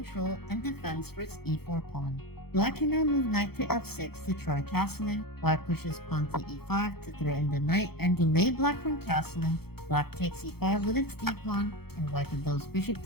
and defense for its e4 pawn. Black can now move knight to f6 to try castling, white pushes pawn to e5 to threaten the knight and delay black from castling, black takes e5 with its d-pawn, and white develops bishop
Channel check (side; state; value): right; late; 0.96 ms